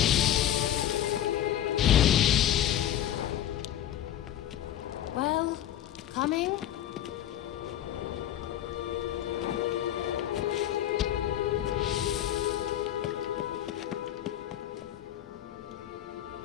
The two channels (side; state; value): right; quieter; 11.5 dB